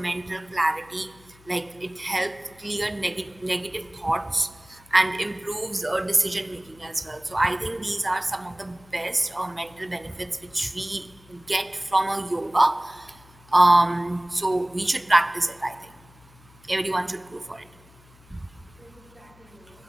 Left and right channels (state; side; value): noise; left; hum, 26 dB below the sound